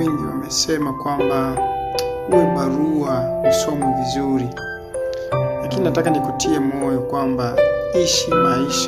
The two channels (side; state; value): both; identical; correlation 1.00